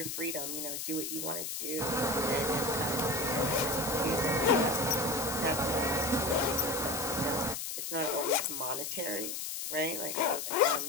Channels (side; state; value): left; noise; hiss, 4 dB below the sound